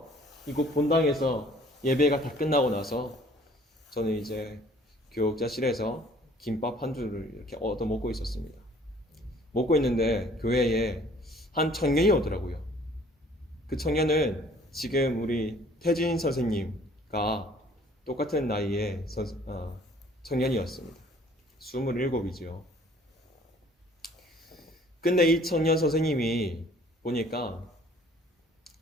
이곳 본당에서 예배가 다 끝나고 나서 저는 이제 교육자실에서 김밥 한 줄을 이렇게 얻어 먹고 있었습니다. 먹고 있는데 교회에 한 청년이 오더라고요. 그 청년은 지금 우리 태진 선생님과 똑같은 나이의 청년이었습니다. 27이죠. 근데 이 청년 선생님이 보니까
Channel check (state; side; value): normal; both; correlation 0.56